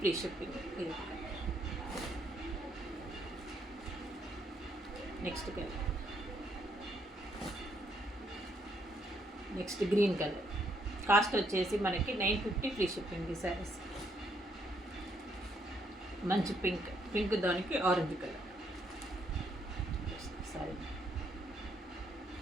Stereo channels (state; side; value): normal; both; correlation 0.72